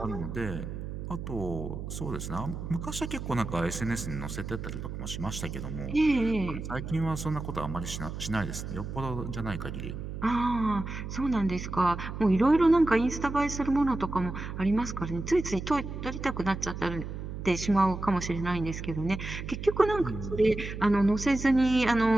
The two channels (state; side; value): noise; right; hum, 7 dB below the sound